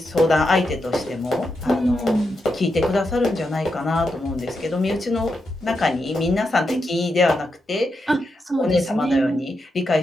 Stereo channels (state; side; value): normal; both; correlation 0.85